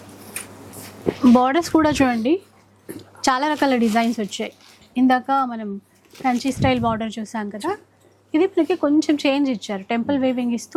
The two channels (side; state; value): both; identical; correlation 1.00